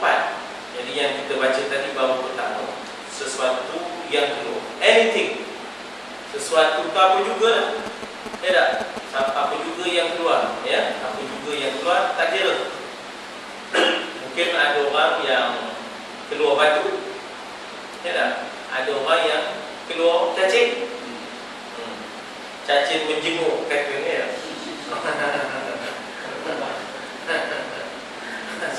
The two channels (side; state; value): both; identical; correlation 1.00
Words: Jadi yang kita baca tadi bahawa pertama, sesuatu yang keluar, anything, sesuatu itu apa juga, ya tak? Apa juga yang keluar, ya? Apa juga yang keluar, tak kira. Mungkin ada orang yang keluar batu, ya tak? Ada orang yang keluar cacing. Cacing menjemur katanya ya.